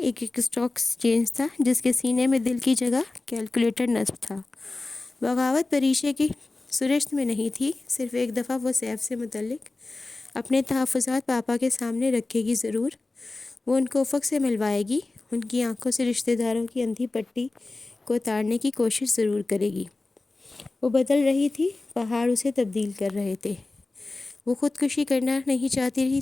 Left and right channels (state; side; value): quieter; right; 3.2 dB